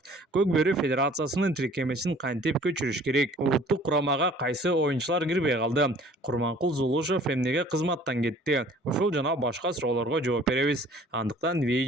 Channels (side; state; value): both; normal; correlation 0.52